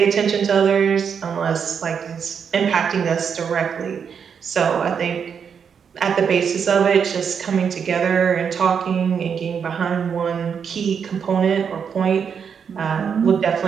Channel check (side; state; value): left; quieter; 6.9 dB